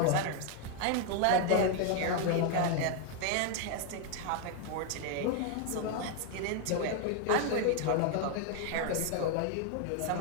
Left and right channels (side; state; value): both; different; correlation 0.01